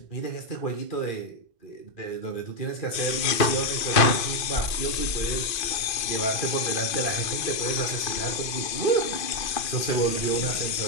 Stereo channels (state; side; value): late; right; 2.4 ms